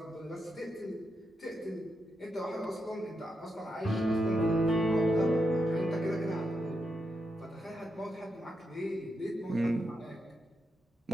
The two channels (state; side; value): normal; both; correlation 0.84